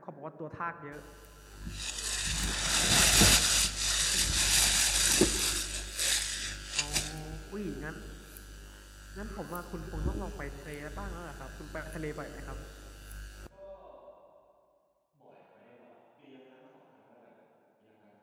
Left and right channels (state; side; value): identical; both; correlation 1.00